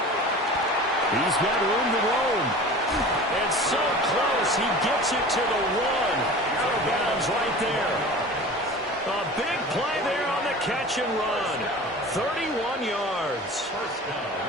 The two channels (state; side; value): normal; both; correlation 0.38